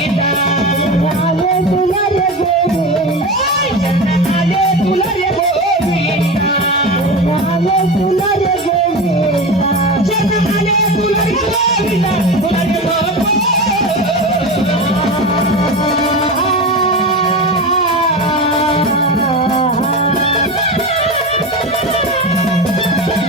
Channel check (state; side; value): normal; both; correlation 0.25